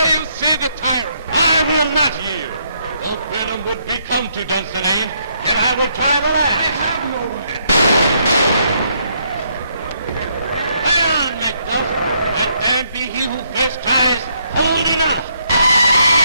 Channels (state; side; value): inverted; both; correlation -0.73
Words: you see the tyrant. I will not yield. Though Birnam would be come to Dunsinane, yet I will try the last. I have no way. Lay on, Macduff. Let there be he who first tries. Hold enough.